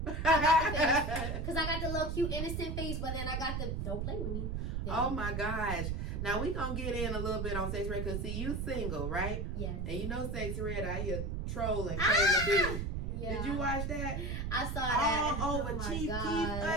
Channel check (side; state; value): right; noise; rumble, 2 dB below the sound